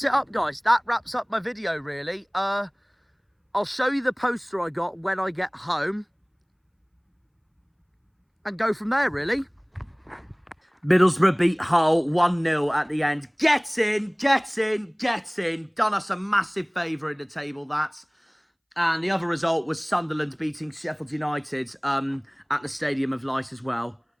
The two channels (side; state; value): both; identical; correlation 1.00